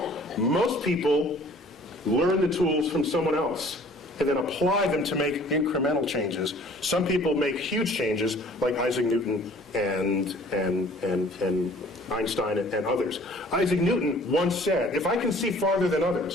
Most people learn the tools from someone else and then apply them to make incremental changes. Some people make huge changes, like Isaac Newton and Einstein and others. Isaac Newton once said, if I can see farther than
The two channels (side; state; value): both; normal; correlation 0.52